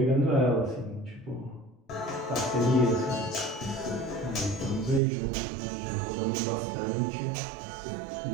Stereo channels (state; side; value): drops out; left; at 5.0 s